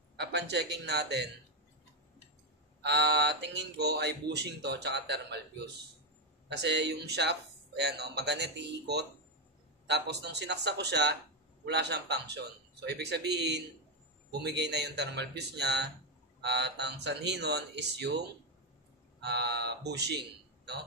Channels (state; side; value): normal; both; correlation 0.05